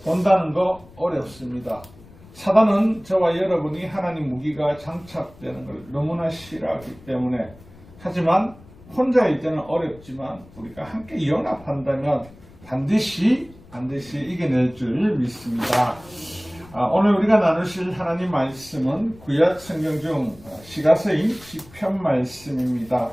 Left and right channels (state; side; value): noise; left; rumble, 23 dB below the sound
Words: 본다는 거 어렵습니다. 사단은 저와 여러분이 하나님 무기가 장착되는 걸 너무나 싫어하기 때문에, 하지만 혼자일 때는 어렵지만 우리가 함께 연합한다면 반드시 이겨낼 줄 믿습니다. 오늘 우리가 나누실 하나님 말씀은 구약 성경 중 시가서인 시편 말씀입니다.